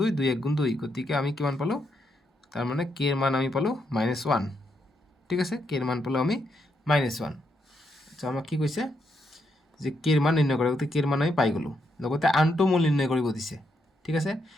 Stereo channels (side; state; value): both; normal; correlation 0.79